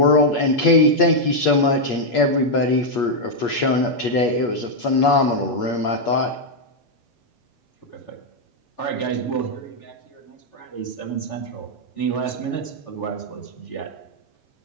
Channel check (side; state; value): right; late; 8.4 ms